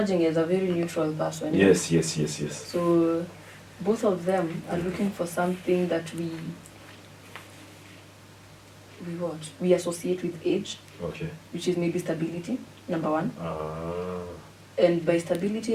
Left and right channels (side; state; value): both; identical; correlation 1.00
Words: as a very neutral person. Yes. So both of them are looking for something that we associate with age, which is maybe stability, number one. And by